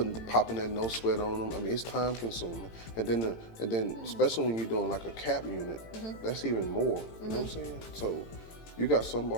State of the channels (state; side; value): late; right; 18 ms